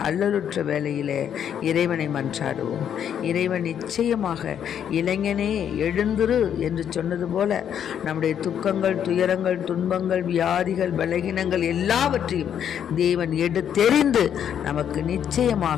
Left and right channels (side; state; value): right; quieter; 9.0 dB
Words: அல்லலுற்ற வேளையிலே இறைவனை மன்றாடுவோம். இறைவன் நிச்சயமாக இளைஞனே எழுந்திரு என்று சொன்னது போல நம்முடைய துக்கங்கள், துயரங்கள், துன்பங்கள், வியாதிகள், பலகீனங்கள் எல்லாவற்றையும் தேவன் எடுத்தெறிந்து நமக்கு